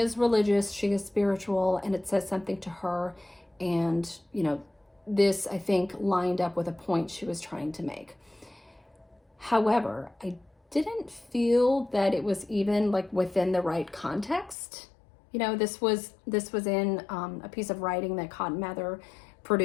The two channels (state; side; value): drops out; right; at 14.6 s